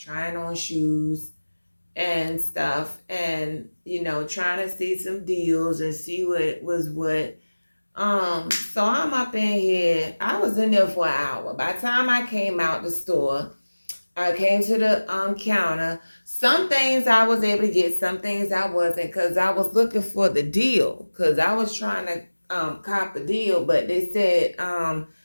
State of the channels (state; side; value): inverted; both; correlation -1.00